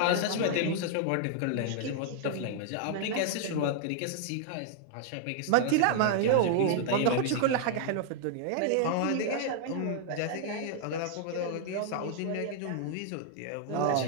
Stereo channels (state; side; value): different; both; correlation 0.00